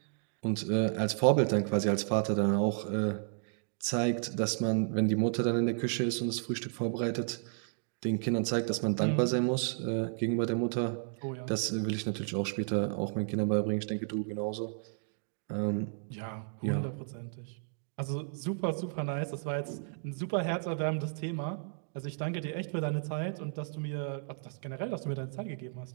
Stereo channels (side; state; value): left; silent; digital silence